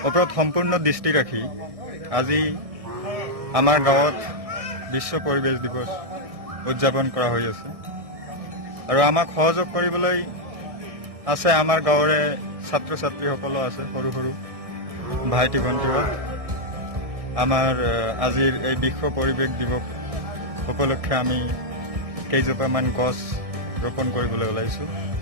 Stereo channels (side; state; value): left; late; 1.6 ms